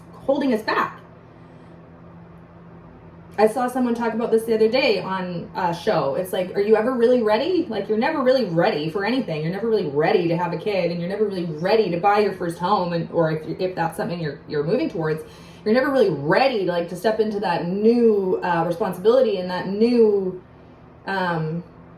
holding us back. I saw someone talk about this the other day on a show. It's like, are you ever really ready? Like, you're never really ready for anything. You're never really ready to have a kid, and you're never really ready to buy your first home, or if that's something you're moving towards, you're never really ready to, like, to step into that new responsibility and that new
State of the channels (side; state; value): both; identical; correlation 1.00